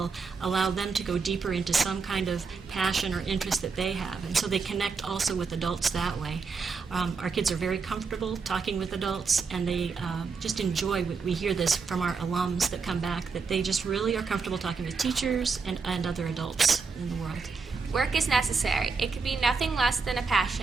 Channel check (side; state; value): left; quieter; 4.9 dB